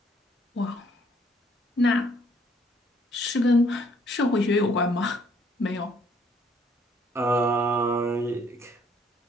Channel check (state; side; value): normal; both; correlation 0.65